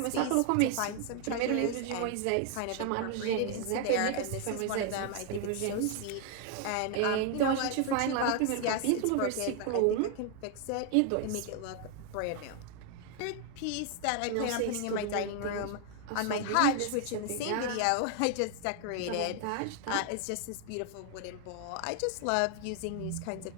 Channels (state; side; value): different; both; correlation 0.00